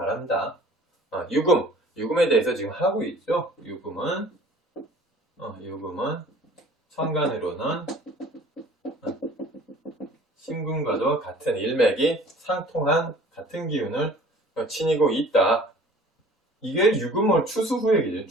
유금에 대해서 지금 하고 있죠. 유금은 천간으로는 신금과도 같은 일맥이 상통한 같은 기운을 지니고 있다. 이게 유금을 추수 후의 기준,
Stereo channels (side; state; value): both; normal; correlation 0.49